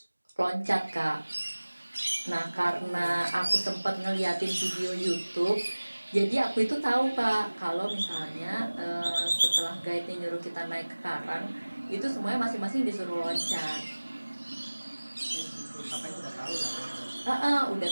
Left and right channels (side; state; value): both; inverted; correlation -1.00